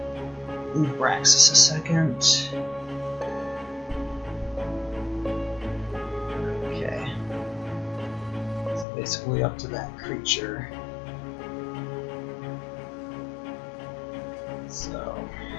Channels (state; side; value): drops out; right; at 8.8 s